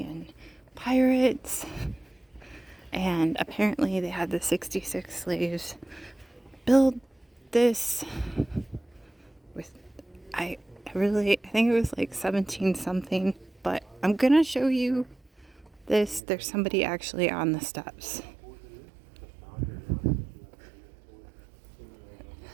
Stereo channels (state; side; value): drops out; left; at 16.2 s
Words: and pirates. And apparently they had the 66 slaves build this with, I think it was like 17 something, but I'm gonna show you this. There's somebody actually on the steps.